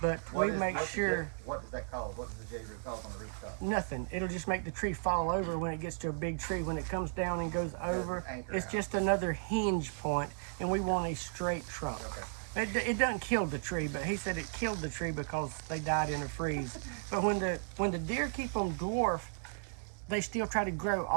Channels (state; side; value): silent; left; digital silence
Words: we make sure. What does that cause? What does the J-root cause on the rootstock? Nothing. It'll just make the tree fall over when it gets to a big tree. When it comes down and goes over, it's just another hinge point, and we want a straight trunk. Okay. It doesn't kill the tree, but he said it killed the tree because they died in a freeze. But when the deer keep them dwarf, they still try to grow